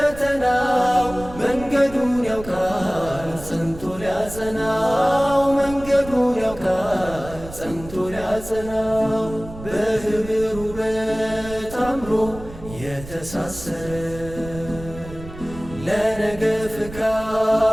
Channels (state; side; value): noise; right; rumble, 14 dB below the sound